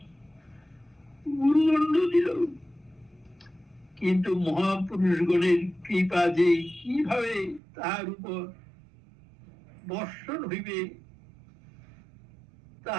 গুরুদণ্ড দিল। কিন্তু মহাপুরুষগণের কৃপা যে কিভাবে তাহার উপর বর্ষণ হইবে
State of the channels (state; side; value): drops out; left; at 7.6 s